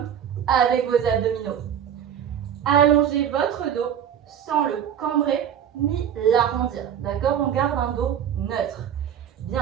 avec vos abdominaux. Allongez votre dos sans le cambrer ni l'arrondir. D'accord? On garde un dos neutre.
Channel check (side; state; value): left; quieter; 9.1 dB